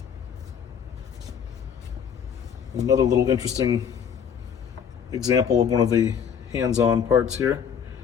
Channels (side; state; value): right; quieter; 7.8 dB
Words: Another little interesting example of one of the hands-on parts here.